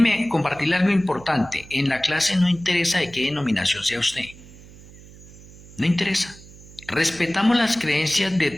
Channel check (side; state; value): right; noise; hum, 20 dB below the sound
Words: compartirle algo importante. En la clase no interesa de qué denominación sea usted. No interesa. Respetamos las creencias de